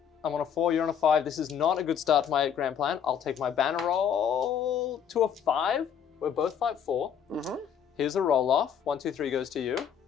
I'm on a 4, you're on a 5. This is not a good start to my grand plan. I'll take my banner roll to a 5. We're both fight 4. Mm-hmm. Here's a roll off. 1, 2, 3 goes to you.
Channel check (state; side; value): quieter; right; 8.2 dB